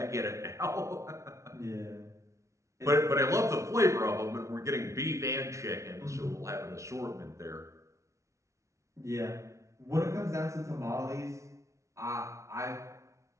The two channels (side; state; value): left; late; 0.14 ms